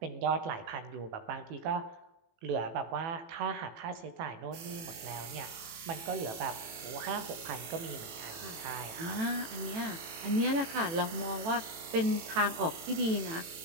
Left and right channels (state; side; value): late; left; 18 ms